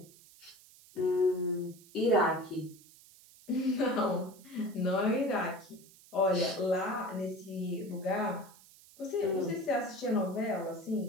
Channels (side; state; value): right; noise; hiss, 23 dB below the sound